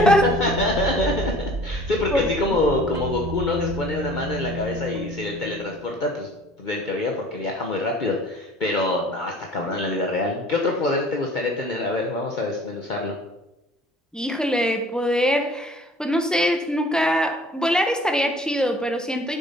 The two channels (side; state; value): both; normal; correlation 0.49